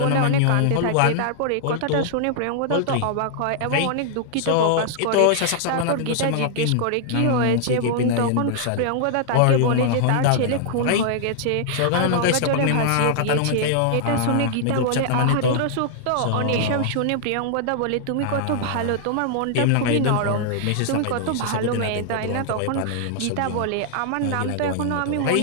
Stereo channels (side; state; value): both; different; correlation -0.01